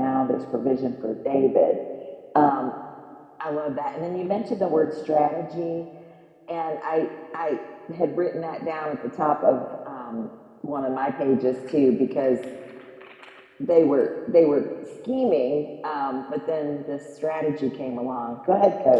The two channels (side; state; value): both; identical; correlation 1.00